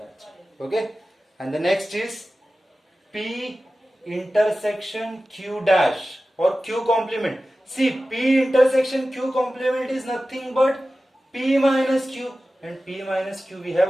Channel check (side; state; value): both; normal; correlation 0.95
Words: it. Okay, and the next is P intersection Q dash. or q complement. See, p intersection q complement is nothing but p minus q, and p minus q we have